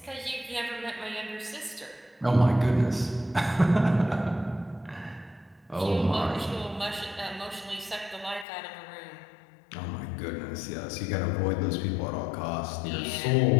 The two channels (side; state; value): right; drops out; at 8.5 s